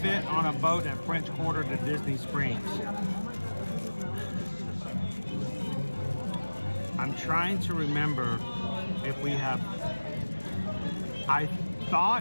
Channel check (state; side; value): inverted; both; correlation -1.00